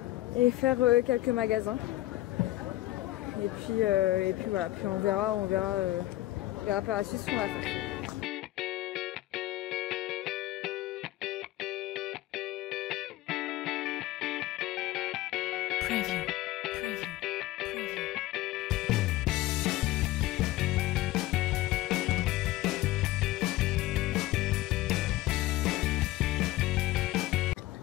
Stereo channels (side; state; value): right; quieter; 16.5 dB